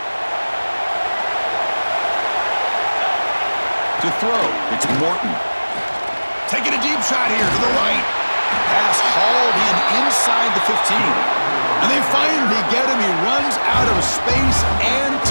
To throw, it's Morton. Taking a deep shot here to the right. Pass hauled in inside the 15. And they finally get him. He runs out of space and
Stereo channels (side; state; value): both; inverted; correlation -1.00